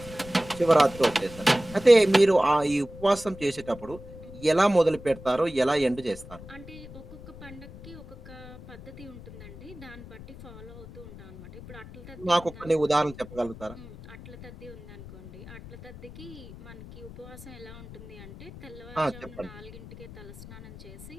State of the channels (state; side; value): noise; left; rumble, 16 dB below the sound